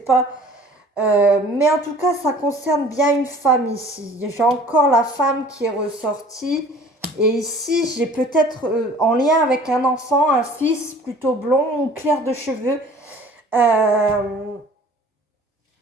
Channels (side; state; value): both; normal; correlation 0.48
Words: Mais en tout cas, ça concerne bien une femme ici. J'ai encore la femme qui est ressortie. Et ici, j'ai peut-être en lien avec un enfant, un fils plutôt blond ou clair de cheveux.